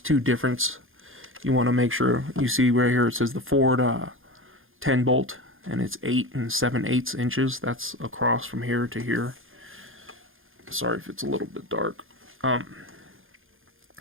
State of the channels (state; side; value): late; left; 0.59 ms